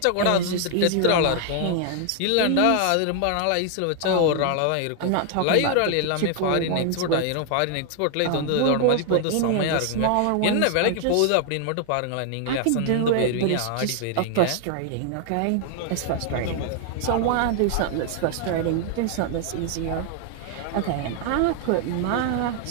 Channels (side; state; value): both; different; correlation 0.00